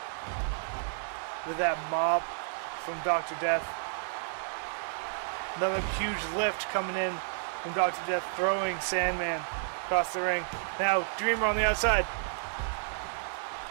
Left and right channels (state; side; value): silent; left; 57 dB below the other